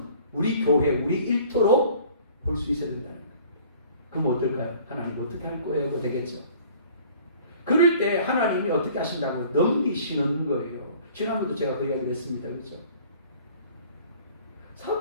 우리 교회, 우리 일터로 볼 수 있어야 된다는 거예요. 그럼 어떨까요? 하나님 어떻게 할 거예요? 되겠죠. 그럴 때 하나님이 어떻게 하신다고 넘기시는 거예요. 지난번도 제가 그 이야기를 했습니다. 그렇죠?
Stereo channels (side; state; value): both; inverted; correlation -0.51